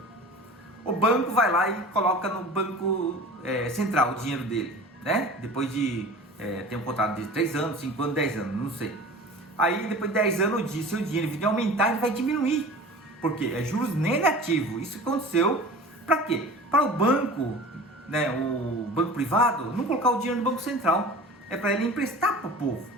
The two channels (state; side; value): normal; both; correlation 0.39